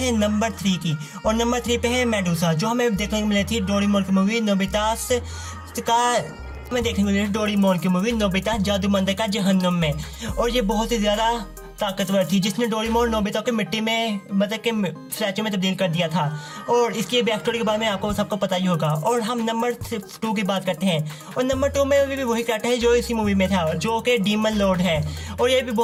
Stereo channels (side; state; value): both; identical; correlation 1.00